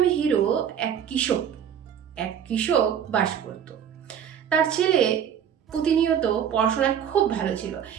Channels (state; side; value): quieter; left; 8.6 dB